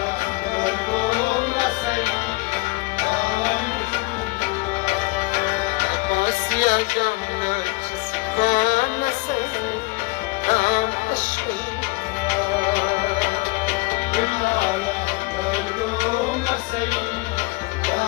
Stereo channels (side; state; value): right; quieter; 24.0 dB